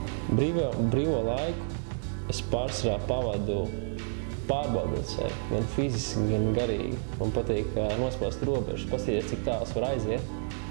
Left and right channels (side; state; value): left; silent; 58 dB below the other